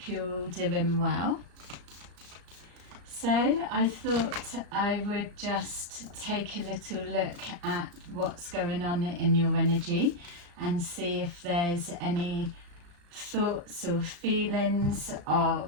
you're all doing well. So I thought I would just take a little look at what's going on in your energy and see if there's any thoughts or feelings of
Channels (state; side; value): late; left; 35 ms